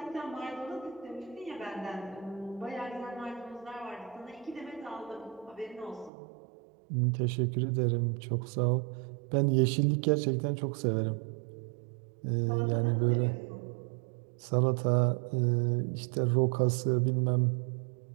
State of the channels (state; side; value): drops out; left; at 6.1 s